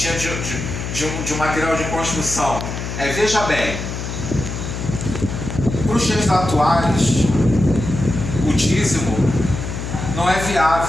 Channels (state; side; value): noise; left; hum, 6 dB below the sound